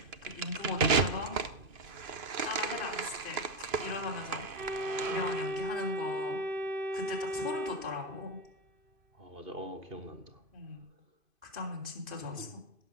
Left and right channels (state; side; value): late; left; 2.5 ms